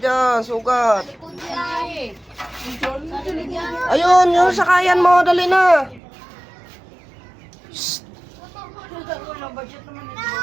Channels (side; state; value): left; drops out; at 6.0 s